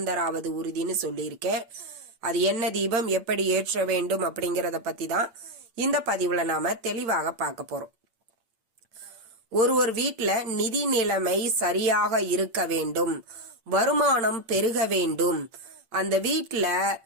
உறுதினு சொல்லியிருக்கேன். அது என்ன தீபம், எப்படி ஏற்ற வேண்டும் அப்படிங்கறத பத்தி தான் இந்த பதிவுல நாம தெளிவாக பார்க்க போறோம். ஒரு வீட்டுல நிதி நிலைமை சரியாக இருக்க வேண்டும், வருமானம் பெருக வேண்டும், அந்த வீட்டுல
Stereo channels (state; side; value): late; left; 8.7 ms